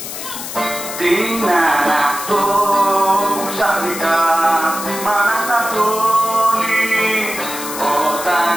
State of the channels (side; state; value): left; noise; hiss, 8 dB below the sound